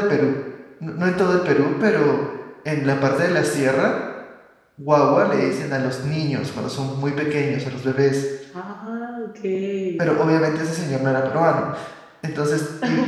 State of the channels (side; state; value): both; identical; correlation 1.00